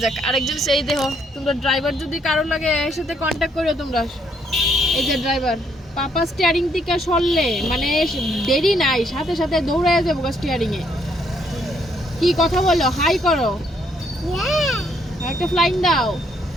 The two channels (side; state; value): both; normal; correlation 0.71